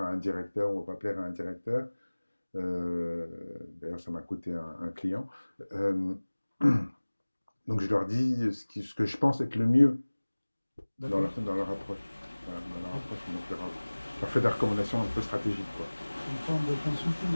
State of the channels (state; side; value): inverted; both; correlation -1.00